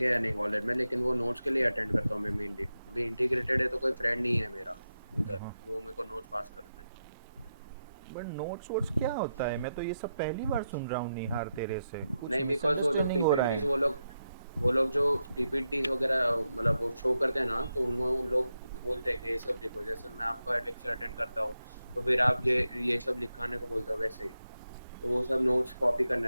या नहीं कॉलेज में, लेकिन वो नोट्स के लिए अटेंड करता हूँ मैं मेनली। अभी इंटीग्रेटेड है तो कोई फ्रेंड नहीं है मेरा उधर, हाँ, वो मेरे को नोट्स पास करते हैं। बट नोट्स वोट्स क्या होता है? मैं तो ये सब पहली बार सुन रहा हूँ निहार तेरे से, कुछ नहीं, बिकॉज वो जो मिसअंडरस्टैंडिंग हो रहा पीपीटीज है। वो लोग जो पीपीटीज वगैरह मतलब वो शो करते हैं ना, तो उनमें उन लोग बोलते हैं कि ये सब लिखो, जैसे मैं आपका लेक्चर अटेंड करता हूँ तो फिर आप ये सब लिखाने को बोलते हो वैसे ही। तो वो सब नोट्स कॉपी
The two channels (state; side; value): inverted; both; correlation -0.87